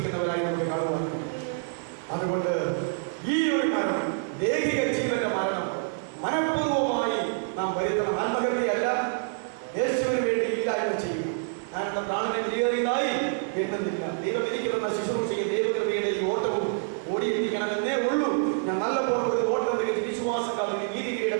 നമുക്ക് കാണുവാൻ. അതുകൊണ്ട് ഈ ഒരു മരണം, ദേഹിക ജീവന്റെ മരണം മനഃപൂർവമായി നാം വരുത്തണം. ആത്മഹത്യയല്ല, യേശുവിന് വേണ്ടി ഇല്ലായ്മ ചെയ്യും. ഞാൻ എന്റെ പ്രാണനെ വിലയേറിയതായി എണ്ണുന്നില്ല. ദൈവം എനിക്ക് തന്ന ശുശ്രൂഷയും ദൈവകൃപയുടെ ഈ ഓട്ടവും ഓടിയിരിക്കണമെന്നേ ഉള്ളൂ. ഞാൻ നല്ല പോലെ ഓട്ടം വിശ്വാസക്കാർ നീതി കിരീടം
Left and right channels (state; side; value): silent; left; digital silence